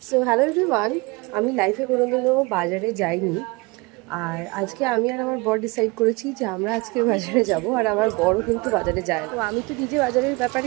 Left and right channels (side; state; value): left; quieter; 25.7 dB